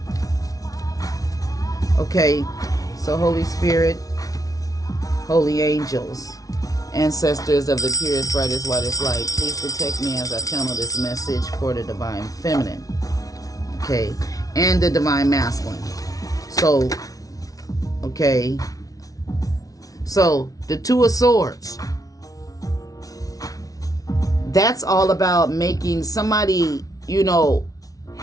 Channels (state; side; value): late; right; 0.18 ms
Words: Okay, so Holy Spirit, holy angels, ancestors of the purest, brightest, whitest light, please protect me as I channel this message for the divine feminine. Okay, and the divine masculine. So, okay. So, the Two of Swords. That's all about making somebody, you know,